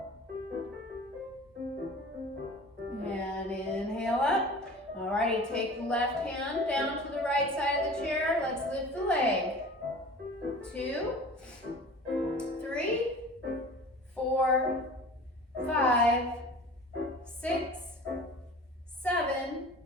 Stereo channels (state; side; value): normal; both; correlation 0.41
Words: And inhale up. Alrighty, take the left hand down to the right side of the chair. Let's lift the leg. 2, 3, 4, 5, 6, 7,